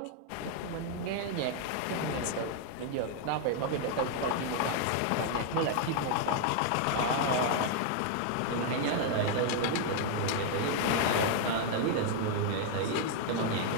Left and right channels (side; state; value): both; different; correlation 0.00